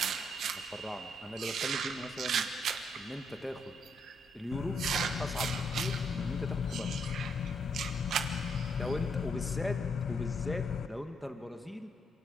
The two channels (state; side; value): normal; both; correlation 0.74